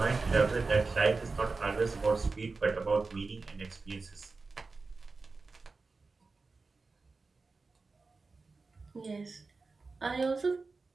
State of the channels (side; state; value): left; quieter; 4.0 dB